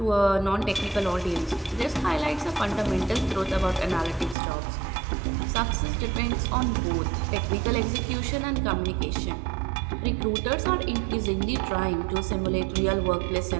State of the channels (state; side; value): drops out; left; at 4.4 s